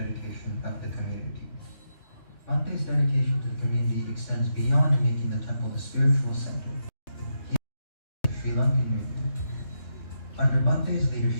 of the community. Bhante's dedication to the community extends beyond making the temple a spiritual center. He is Sri Lankan movement. Under Bhante's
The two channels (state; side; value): late; right; 3.2 ms